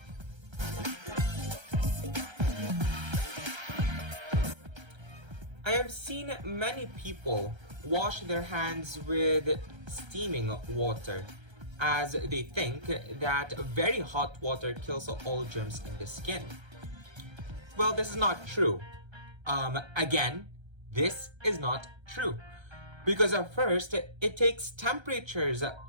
I have seen many people wash their hands with steaming water, as they think that very hot water kills all germs in the skin. Well, this is not true. Again, this is not true. Because at first, it takes temperatures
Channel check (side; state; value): left; late; 1.3 ms